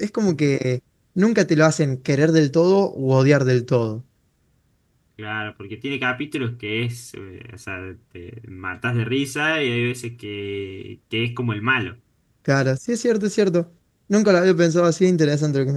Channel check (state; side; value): identical; both; correlation 1.00